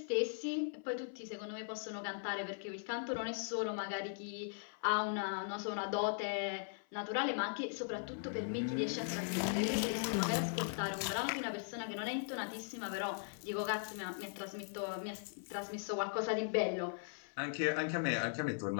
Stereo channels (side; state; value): right; silent; 52 dB below the other